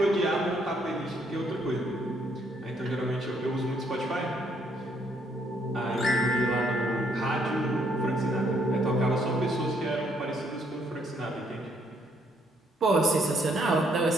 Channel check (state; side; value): normal; both; correlation 0.70